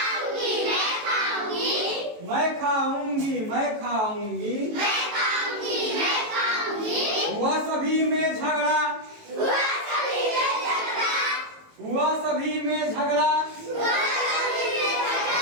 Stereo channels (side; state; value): left; late; 18 ms